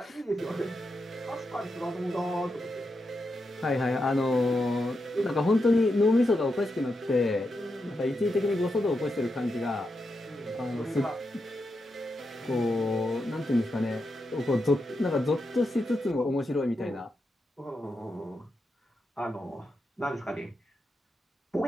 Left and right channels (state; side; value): normal; both; correlation 0.86